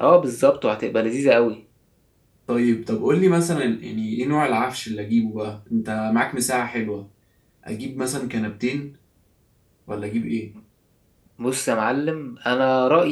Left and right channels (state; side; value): identical; both; correlation 1.00